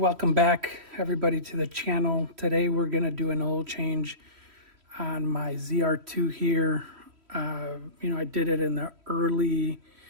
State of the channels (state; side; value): late; left; 3.1 ms